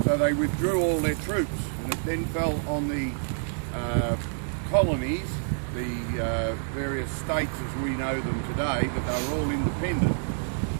so they withdrew all their troops, and it then fell on the colonies, the various states as we know them today, but they were all independent,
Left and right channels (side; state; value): left; silent; 60 dB below the other